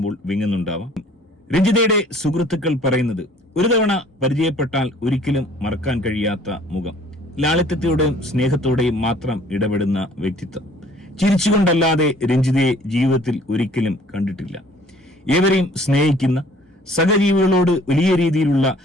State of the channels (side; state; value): both; normal; correlation 0.55